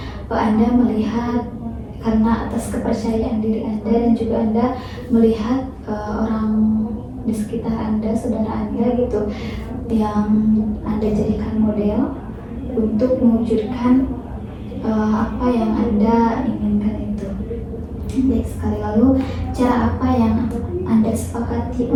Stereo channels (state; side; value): identical; both; correlation 1.00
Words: Anda melihat karena atas kepercayaan diri Anda, dan juga Anda melihat orang di sekitar Anda, saudara Anda gitu, yang Anda jadikan model untuk mewujudkan apa yang Anda inginkan itu. Baik sekali. Lalu cara apa yang Anda sepakati